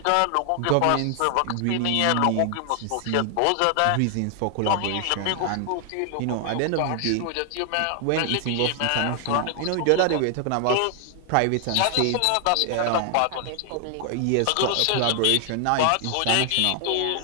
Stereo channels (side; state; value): both; different; correlation 0.00